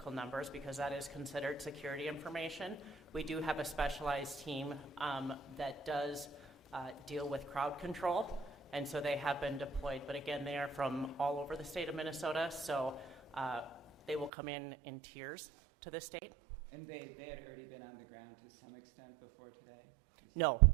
numbers because that is considered security information. We do have a specialized team that does deal with crowd control, and so they have been deployed. But again, they are from all over the state of Minnesota, so they will come in tiers to the state. And they had already been on the ground to some extent before today? No,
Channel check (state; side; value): drops out; left; at 14.3 s